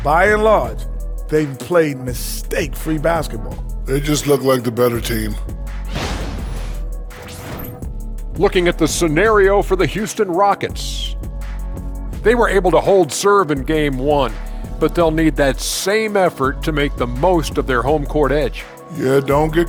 by and large, they've played mistake-free basketball. They just look like the better team. Looking at the scenario for the Houston Rockets. They were able to hold serve in game one, but they'll need that same effort to make the most of their home court edge. Yeah, don't get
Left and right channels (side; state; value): both; identical; correlation 1.00